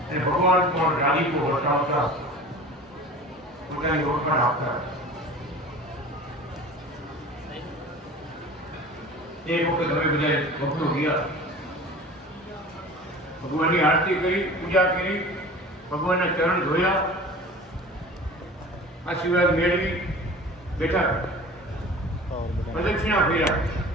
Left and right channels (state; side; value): normal; both; correlation 0.40